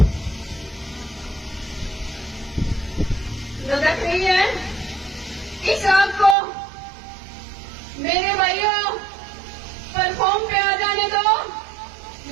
धधक रही है। इस आग को मेरे भाइयों प्लेटफॉर्म पे आ जाने दो,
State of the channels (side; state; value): left; drops out; at 6.4 s